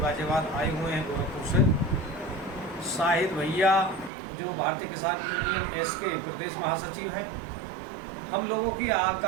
गाजियाबाद आए हुए हैं गोरखपुर से। शाहिद भैया, जो भारतीय किसान यूनियन एस के प्रदेश महासचिव हैं। हम लोगों की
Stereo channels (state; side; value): drops out; left; at 4.1 s